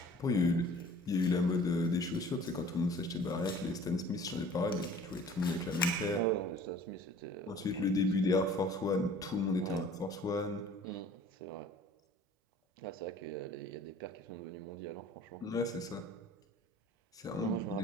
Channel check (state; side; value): normal; both; correlation 0.49